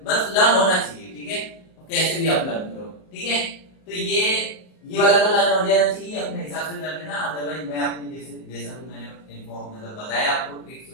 बस लर्न होना चाहिए, ठीक है, कैसे भी आप लर्न करो, ठीक है। तो ये वाला तो लर्न हो जाना चाहिए, अपने हिसाब से कर लेना, अदरवाइज मैं अपने जैसा भी मैंने इन्फॉर्म मतलब बताया आपको ट्रिक्स,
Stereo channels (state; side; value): late; right; 38 ms